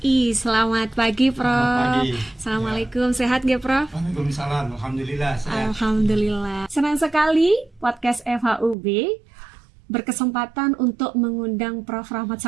Selamat pagi Prof. Selamat pagi. Assalamualaikum, sehat nggak Prof? Waalaikumsalam, alhamdulillah sehat. Alhamdulillah. Senang sekali podcast FHUB berkesempatan untuk mengundang Prof. Rahmat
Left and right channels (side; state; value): left; drops out; at 8.8 s